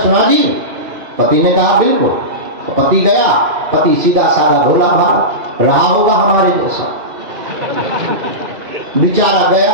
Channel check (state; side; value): late; left; 2.5 ms